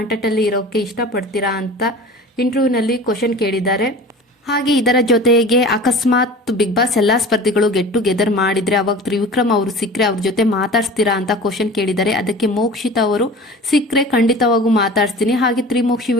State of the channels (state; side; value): normal; both; correlation 0.39